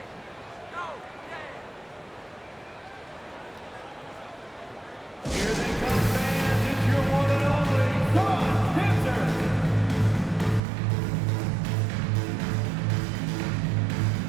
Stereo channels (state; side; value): drops out; left; at 10.6 s